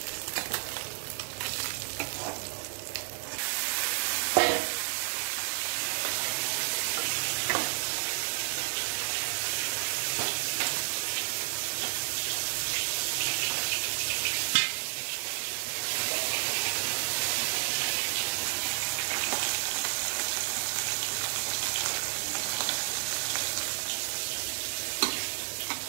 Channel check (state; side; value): silent; left; digital silence